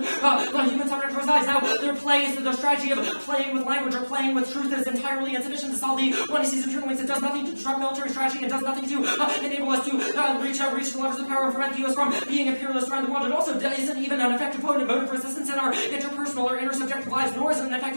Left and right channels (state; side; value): inverted; both; correlation -1.00